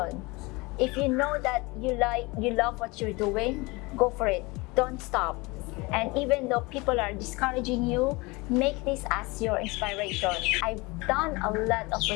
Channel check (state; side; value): quieter; right; 24.7 dB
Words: if you know that you love what you're doing, go for it. Don't stop. And even though people are discouraging you, make this as your inspiration. I've done a lot of